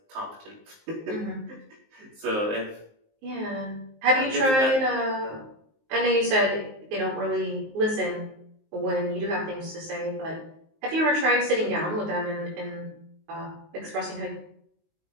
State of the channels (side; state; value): left; late; 19 ms